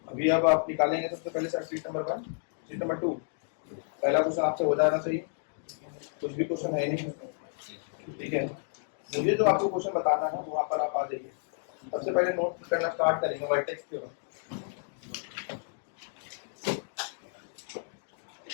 अभी अब आप निकालेंगे सबसे पहले sir sheet number 1, sheet number 2। पहला क्वेश्चन आपसे हो जाना चाहिए, कुछ भी क्वेश्चन है नहीं, ठीक है? मुझे जो आपको क्वेश्चन बताना है वहां पर आप आ जाइए। सबसे पहले नोट करना स्टार्ट करेंगे वर्टेक्स के बाद।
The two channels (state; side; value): silent; right; digital silence